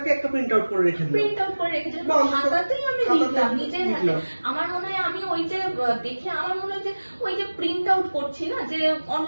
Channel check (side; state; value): both; inverted; correlation -1.00